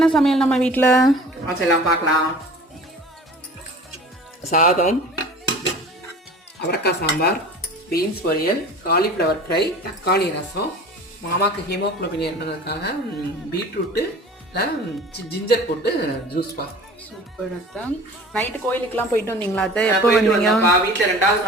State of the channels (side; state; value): both; normal; correlation 0.42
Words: சமையல் நம்ம வீட்டில்? எல்லாம் பார்க்கலாம். சாதம், அவரைக்காய் சாம்பார், பீன்ஸ் பொரியல், காலிஃப்ளவர் ஃப்ரை, தக்காளி ரசம், மாமாவுக்கு ஹீமோக்ளோபின் இருந்ததுக்காக பீட்ரூட்டு ஜிஞ்சர் போட்டு ஜூஸ்பா. சூப்பர் அத்தை. நைட்டு கோயிலுக்குலாம் போயிட்டு வந்தீங்களா அத்தை? எப்போ போயிட்டு வந்தீங்க? வந்தோம்ப்பா. வீட்டில் 2வது